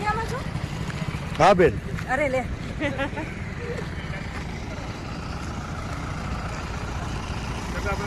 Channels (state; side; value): identical; both; correlation 1.00